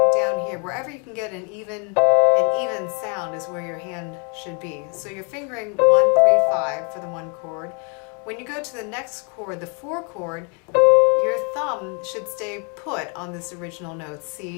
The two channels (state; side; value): quieter; right; 36.0 dB